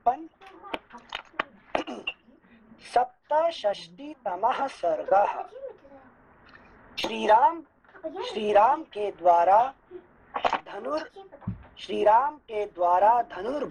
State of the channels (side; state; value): both; identical; correlation 1.00